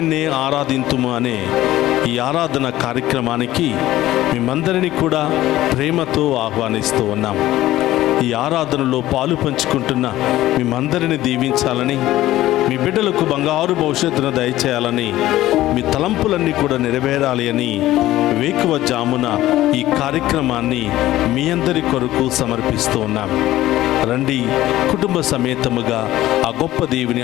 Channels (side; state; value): right; quieter; 15.2 dB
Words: ఆరాధింతుము అనే ఈ ఆరాధన కార్యక్రమానికి మేమందరినీ కూడా ప్రేమతో ఆహ్వానిస్తూ ఉన్నాం. ఈ ఆరాధనలో పాలు పంచుకుంటున్న మేమందరినీ దీవించాలని, మీ బిడ్డలకు బంగారు భవిష్యత్తును దయచేయాలని, మీ తలంపులన్నీ కూడా నెరవేరాలి అని వేకువజామున ఈ కార్యక్రమాన్ని మీ అందరి కొరకు సమర్పిస్తూ ఉన్నాం. రండి, కుటుంబ సమేతముగా ఆ గొప్ప